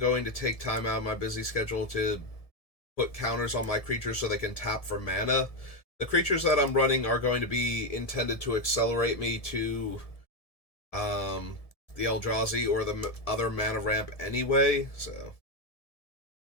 to take time out of my busy schedule to put counters on my creatures so they can tap for mana. The creatures that I'm running are going to be intended to accelerate me to the Eldrazi or the other mana ramp anyway, so...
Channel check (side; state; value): right; late; 1.7 ms